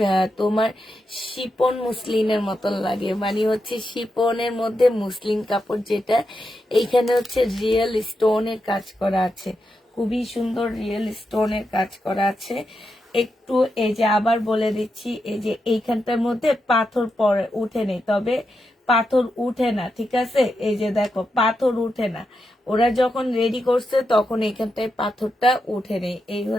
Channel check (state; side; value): normal; both; correlation 0.86